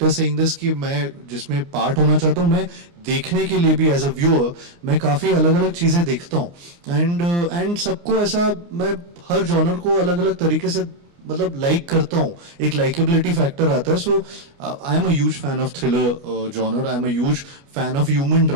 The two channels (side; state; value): left; late; 29 ms